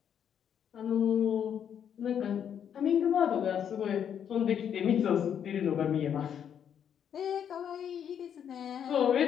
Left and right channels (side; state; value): right; quieter; 8.6 dB